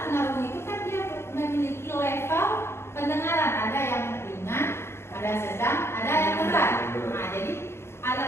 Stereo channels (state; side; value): late; right; 0.12 ms